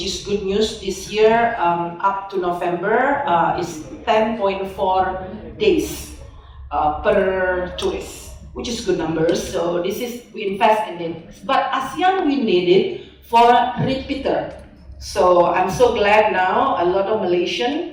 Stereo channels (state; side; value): identical; both; correlation 1.00